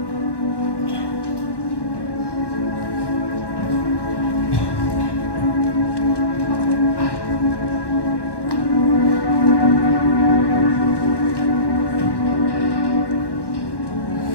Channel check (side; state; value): right; late; 1.1 ms